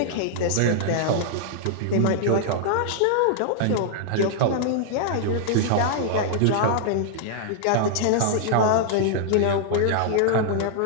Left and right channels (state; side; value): different; both; correlation -0.01